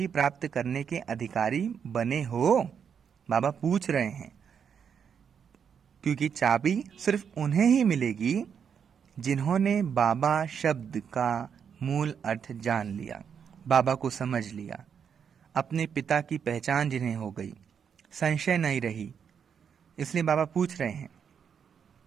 प्राप्त करने के अधिकारी बने हो? बाबा पूछ रहे हैं, क्योंकि चाबी सिर्फ उन्हें ही मिलेगी जिन्होंने बाबा शब्द का मूल अर्थ जान लिया, बाबा को समझ लिया, अपने पिता की पहचान जिन्हें हो गई, संशय नहीं रही। इसलिए बाबा पूछ रहे हैं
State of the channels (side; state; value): left; quieter; 7.3 dB